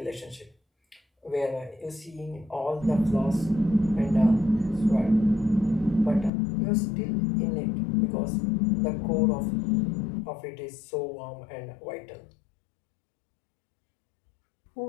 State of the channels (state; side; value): drops out; right; at 6.3 s